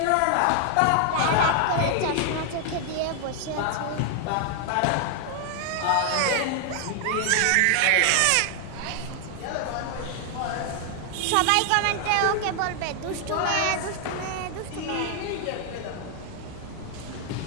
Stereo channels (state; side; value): different; both; correlation 0.00